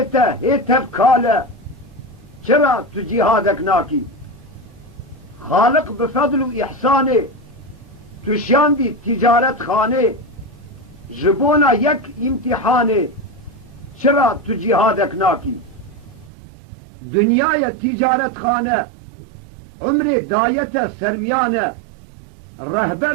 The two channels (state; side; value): drops out; left; at 16.3 s